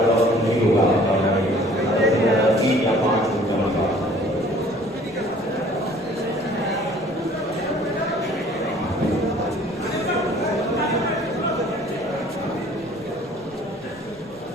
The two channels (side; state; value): both; normal; correlation 0.53